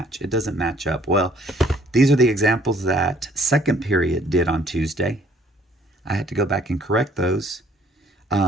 It doesn't match up. Well, these are the examples that second period did on Tuesday. I had to go back and correct those.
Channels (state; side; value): normal; both; correlation 0.60